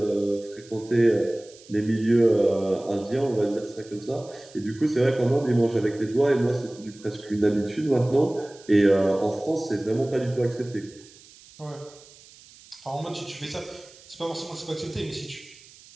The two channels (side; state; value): right; noise; hiss, 23 dB below the sound